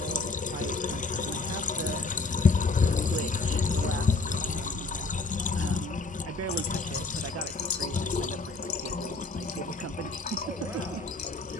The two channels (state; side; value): quieter; right; 3.7 dB